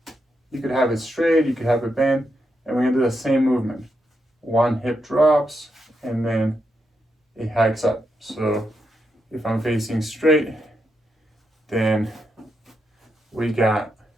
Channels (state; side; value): normal; both; correlation 0.83